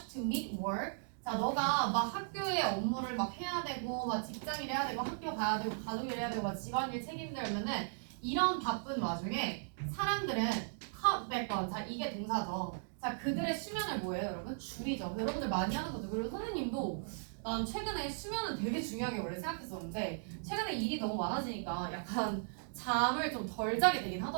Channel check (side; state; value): left; silent; digital silence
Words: to meet work, 자, 너가 막 학교의 업무를 막 해야 되고, 막 직장일 해야 되고, 학교 가야 되고, 가족일 해야 되고, 막 집안일 책임들면은 이런 바쁜 와중에 사람들은 cut back on, 자, 이게 동사죠. 자, 그들의 수면을 뭐예요, 여러분? 줄이죠. 여러분들 많이 하는 거죠. 그리고 선생님도 난 최근에 수면은 되게 중요하게 원래 생각했었는데 최근에 일이 너무 많아지니까 약간 잠을 좀 덜 자게 되긴